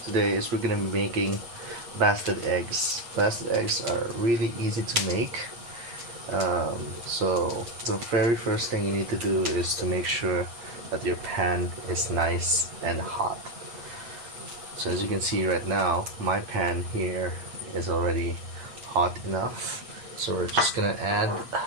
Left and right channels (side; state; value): left; late; 8.5 ms